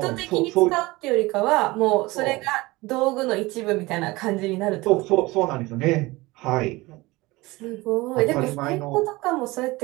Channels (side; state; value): left; quieter; 21.3 dB